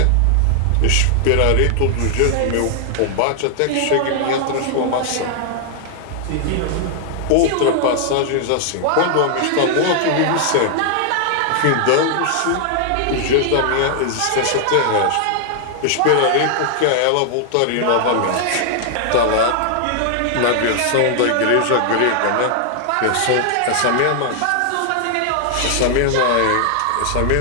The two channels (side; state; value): both; different; correlation 0.00